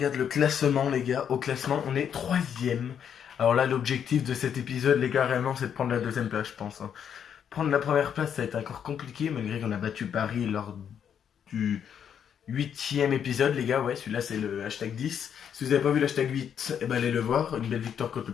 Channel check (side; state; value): right; quieter; 8.3 dB